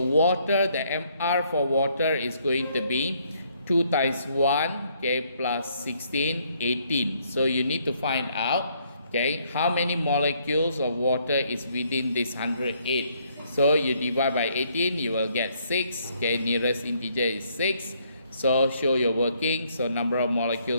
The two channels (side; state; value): both; inverted; correlation -0.69